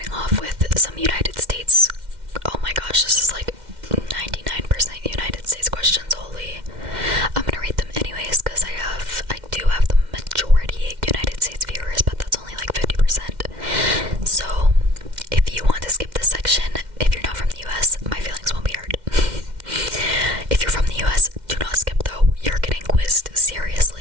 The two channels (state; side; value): late; left; 2.1 ms